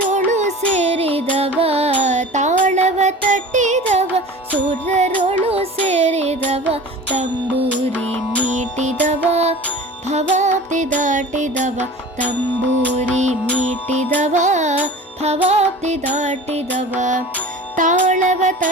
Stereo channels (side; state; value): both; normal; correlation 0.39